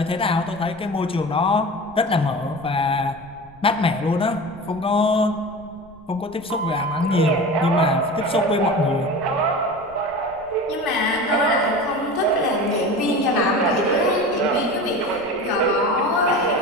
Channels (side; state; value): right; noise; rumble, 24 dB below the sound